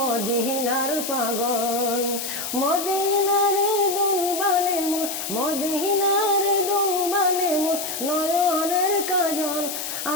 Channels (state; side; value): noise; left; hiss, 5 dB below the sound